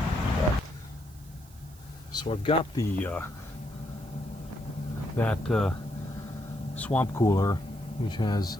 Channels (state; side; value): noise; right; hiss, 24 dB below the sound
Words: So I've got the that swamp cooler, which has